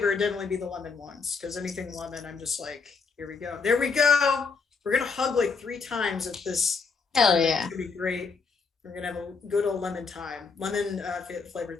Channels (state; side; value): quieter; right; 4.9 dB